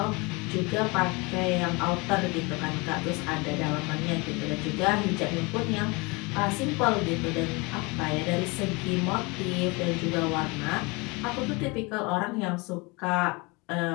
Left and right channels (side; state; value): right; quieter; 27.0 dB